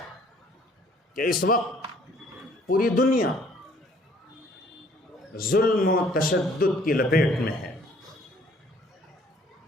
کہ اس وقت پوری دنیا ظلم و تشدد کی لپیٹ میں ہے۔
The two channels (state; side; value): normal; both; correlation 0.59